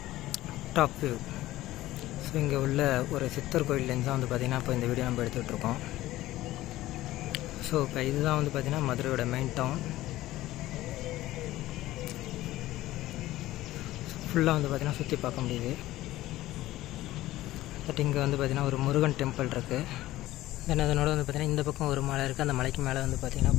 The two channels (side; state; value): right; quieter; 16.1 dB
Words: டாப் வியூ. ஸோ இங்கே உள்ள ஒரு சித்தர் கோயிலேருந்து தான் வந்து பார்த்திங்கன்னா இப்போ இந்த வீடியோ நம்ம எடுத்துகிட்ருக்கோம். ஸோ இப்போ இதுதான் வந்து பார்த்திங்கன்னா மதுரையோட மெயின் டவுன். ஃபுல்லாக வந்து பார்த்திங்கன்னா சுற்றி பார்க்க முடியுது. பட் இங்கே வந்து பார்த்திங்கன்னா ஒரு முருகன் டெம்பிள் இருக்குது. தென் அதனோட வந்து பார்த்திங்கன்னா இந்த பக்கம் ஒரு மலை இருக்குது. அந்த மலைக்கு மேலே வந்து பார்த்திங்கன்னா